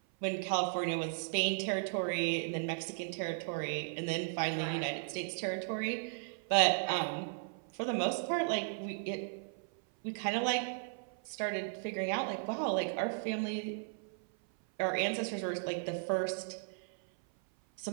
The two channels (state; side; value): silent; left; 54 dB below the other